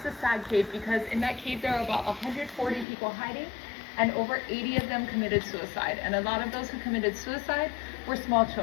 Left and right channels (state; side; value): drops out; right; at 2.9 s